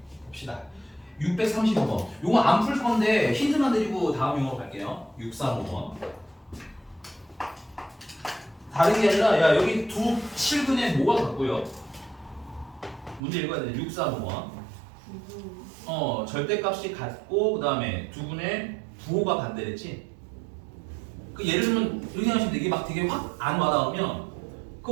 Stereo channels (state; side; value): drops out; left; at 13.2 s